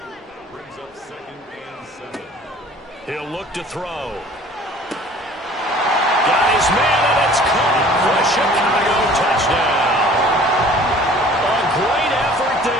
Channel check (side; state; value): both; normal; correlation 0.49